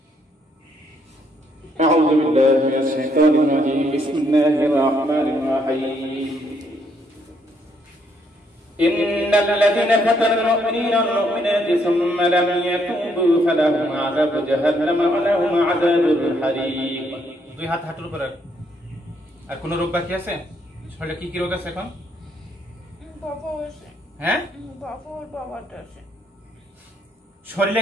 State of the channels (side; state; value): both; normal; correlation 0.72